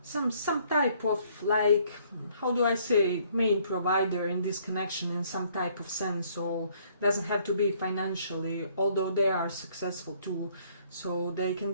some type of, like, how do I say, main provider in this connection in some type of sense. So doesn't have to be financially, although they are successful too. So they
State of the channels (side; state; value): both; inverted; correlation -0.63